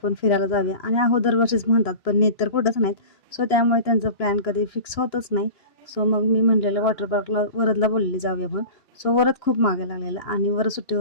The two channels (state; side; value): late; right; 2.9 ms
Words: फिरायला जाऊया आणि आहो दरवर्षीच म्हणतात पण नेत तर कुठंच नाहीत. सो त्यामुळे त्यांचं प्लॅन कधी फिक्स होतच नाही. सो मग मी म्हणलेलं वॉटर पार्कला वरदला बोललेली जाऊया म्हणून. सो वरद खूप मागे लागलेला आणि वरद